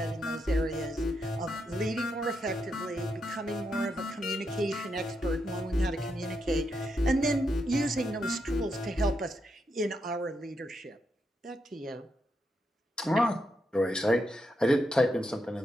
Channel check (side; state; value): both; normal; correlation 0.82